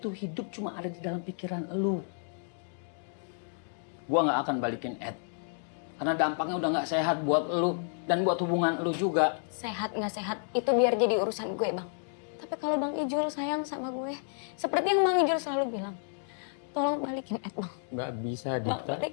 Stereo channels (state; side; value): silent; right; digital silence